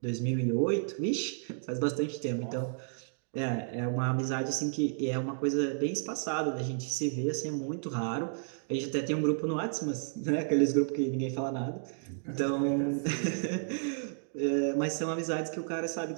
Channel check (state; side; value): silent; left; digital silence